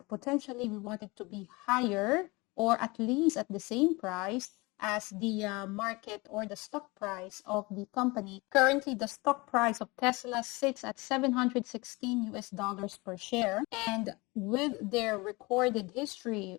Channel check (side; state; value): right; quieter; 24.6 dB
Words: potentially we want it to be higher, or at least at the same price as the market or the stock price of the company. Currently, the stock price of Tesla sits at $716 per share, and with their recorded history